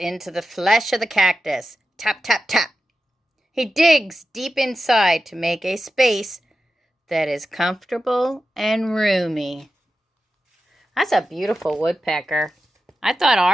the flesh of the cactus. Tap, tap, tap. He digs deep inside to make a space that is comfortable and roomy. That's a beautiful woodpecker. I thought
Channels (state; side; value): normal; both; correlation 0.91